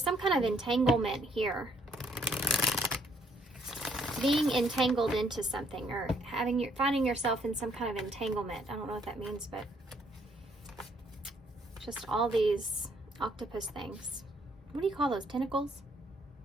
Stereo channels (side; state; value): both; normal; correlation 0.67